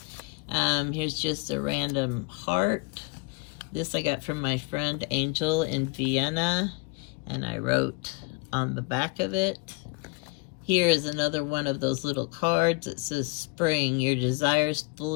Here's just a random heart. This I got from my friend Angel in Vienna, and I wrote on the back of it. Here is another one of those little cards. It says, spring, your desires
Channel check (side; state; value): right; quieter; 28.8 dB